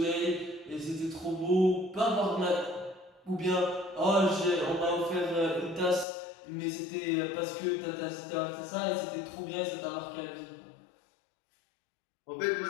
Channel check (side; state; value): right; drops out; at 6.1 s